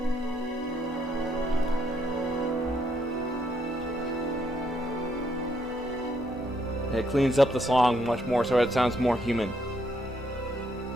It cleans up the song much more so it sounds more human.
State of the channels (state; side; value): normal; both; correlation 0.73